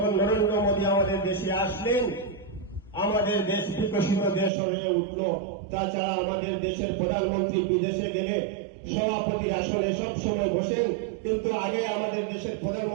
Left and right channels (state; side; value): drops out; left; at 4.5 s